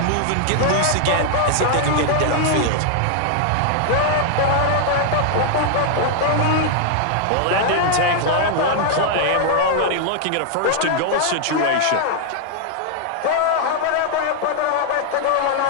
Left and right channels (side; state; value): both; different; correlation 0.00